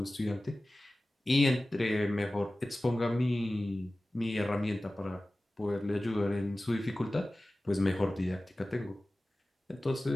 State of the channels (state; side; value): normal; both; correlation 0.96